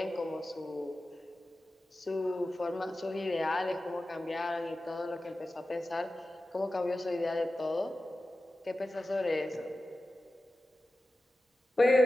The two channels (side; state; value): both; normal; correlation 0.94